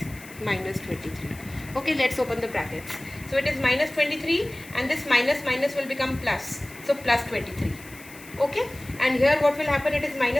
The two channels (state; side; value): noise; left; hiss, 19 dB below the sound